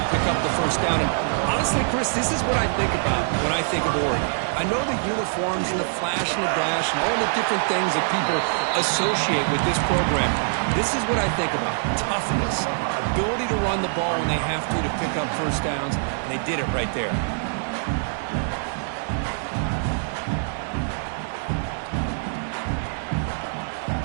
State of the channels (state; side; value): silent; left; digital silence